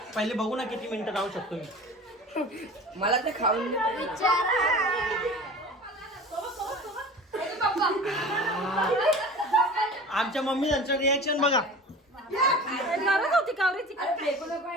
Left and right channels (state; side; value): normal; both; correlation 0.38